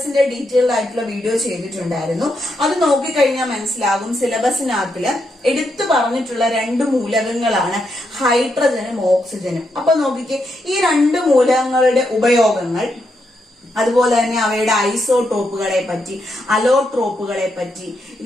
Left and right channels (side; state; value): both; normal; correlation 0.81